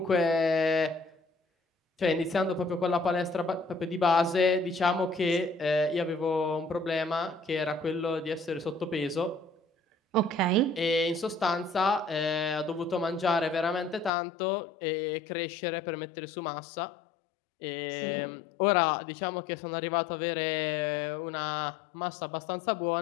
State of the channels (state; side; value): drops out; right; at 14.1 s